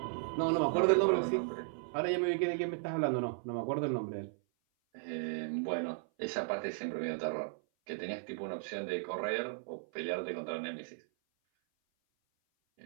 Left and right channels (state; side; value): silent; left; 54 dB below the other